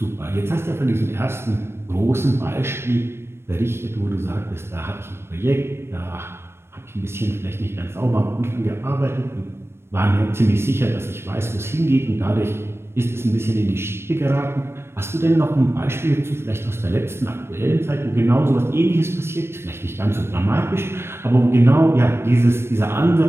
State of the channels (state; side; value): late; left; 0.12 ms